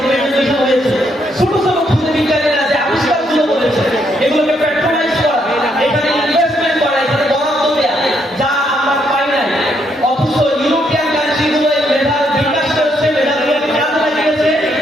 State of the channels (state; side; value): normal; both; correlation 0.74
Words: প্রেজেন্টেশন হয়েছে, ছোট ছোট খুদে বিজ্ঞানীরা যে আবিষ্কারগুলো করেছে এগুলোকে প্যাট্রোনাইজ করা, এখানে ইনভেস্টমেন্ট করা, এখানে বরাদ্দ দেয়া, যা আমরা পাই নাই। অথচ ইউরোপিয়ান কান্ট্রিগুলো এই মেধার বিকাশ করেছে, মেধাগুলোকে কাজে লাগিয়েছে,